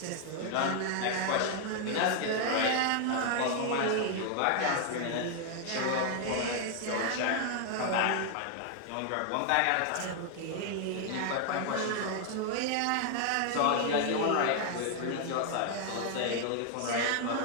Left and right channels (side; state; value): both; different; correlation 0.00